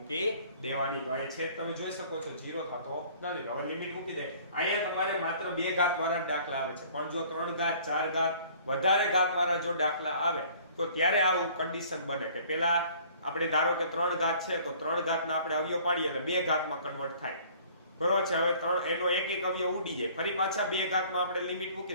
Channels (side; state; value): both; inverted; correlation -0.53